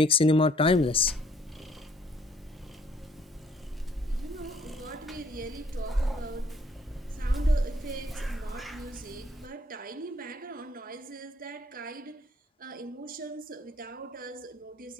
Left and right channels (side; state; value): both; normal; correlation 0.63